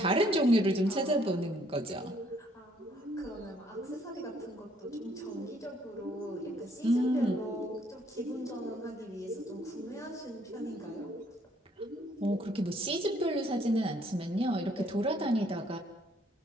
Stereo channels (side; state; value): both; normal; correlation 0.66